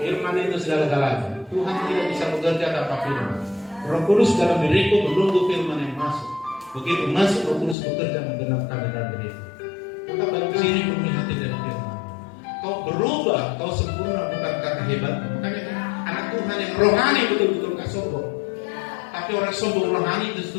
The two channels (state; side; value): drops out; right; at 7.8 s